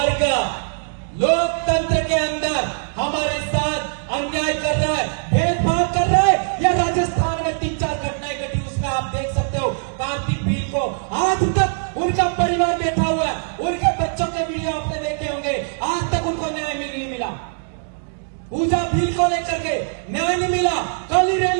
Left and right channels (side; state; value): left; silent; 65 dB below the other